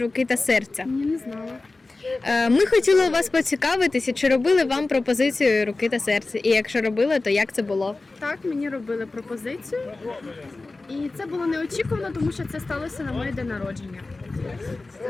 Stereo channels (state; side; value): quieter; right; 3.3 dB